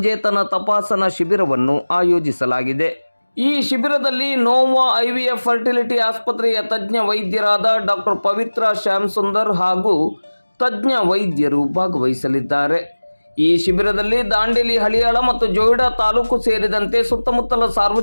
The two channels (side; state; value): both; inverted; correlation -1.00